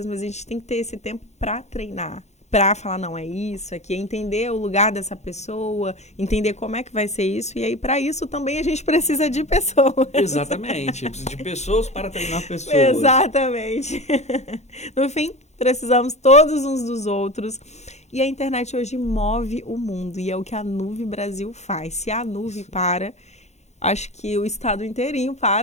mas a gente tem que ter esse tempo para treinar, para falar, não, é isso aqui, entender o lugar dessa pessoa, entender como é que vai ser isso, e aí para isso também a gente precisa de pessoas. Exatamente, eu preciso de pessoas para treinar pessoas. Exatamente. No fim, precisamos todos uns dos outros. E a internet hoje move o mundo, e é o que a Nuve Brasil faz. Se a Nuve para, acho que o estado inteirinho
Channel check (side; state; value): right; late; 0.33 ms